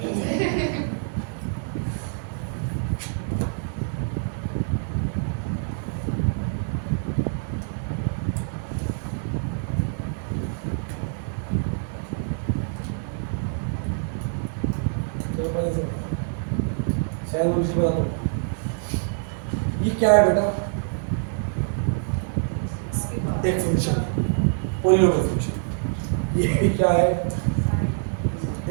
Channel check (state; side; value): silent; left; 61 dB below the other